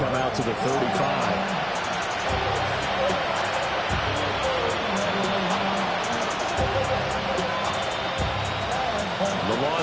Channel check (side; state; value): both; identical; correlation 1.00